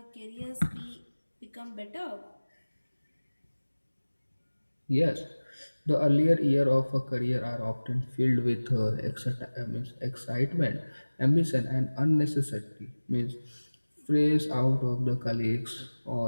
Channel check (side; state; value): both; inverted; correlation -1.00